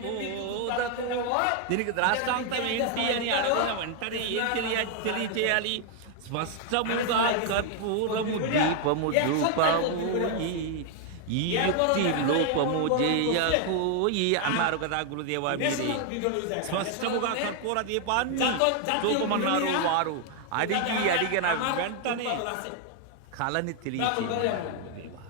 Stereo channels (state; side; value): different; both; correlation 0.00